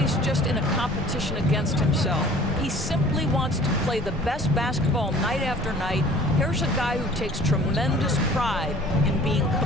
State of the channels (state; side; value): noise; left; hum, 19 dB below the sound